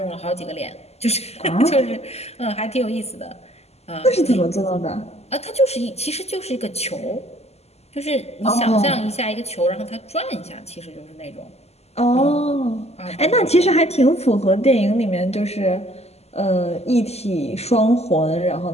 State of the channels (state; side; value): late; right; 0.30 ms